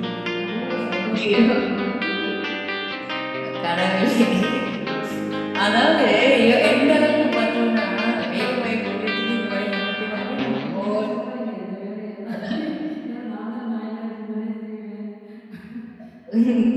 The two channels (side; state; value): both; identical; correlation 1.00